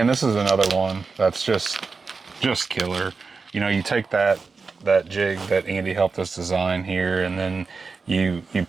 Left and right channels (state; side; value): quieter; left; 4.5 dB